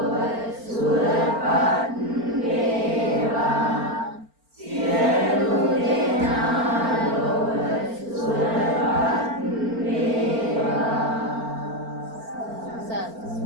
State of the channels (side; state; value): left; late; 4.4 ms